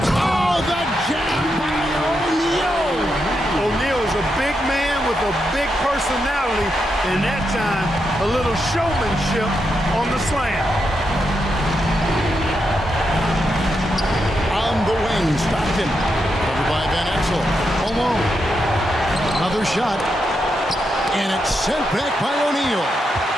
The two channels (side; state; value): both; normal; correlation 0.84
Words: Oh, the jam by O'Neal! O'Neal is a big man with a big personality, and that time a little showmanship on the slam. On the wing, Stockton. Covered by Van Exel. Alone. Another shot. And it's sent back by O'Neal.